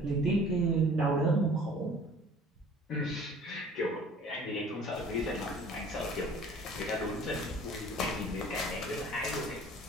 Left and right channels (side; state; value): both; normal; correlation 0.49